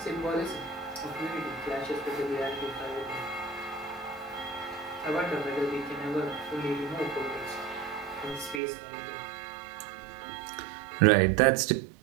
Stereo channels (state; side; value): drops out; left; at 8.6 s